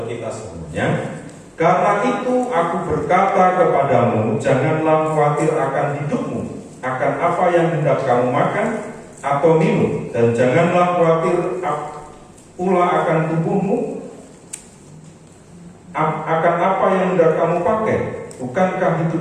kita semuanya. Karena itu aku berkata kepadamu, janganlah khawatir akan hidupmu, akan apa yang hendak kamu makan atau minum, dan janganlah khawatir pula akan tubuhmu, akan apa yang hendak kamu pakai. Bukankah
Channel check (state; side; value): identical; both; correlation 1.00